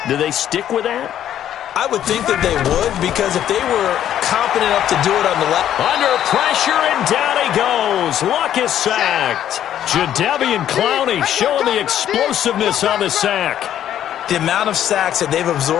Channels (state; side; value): quieter; right; 10.9 dB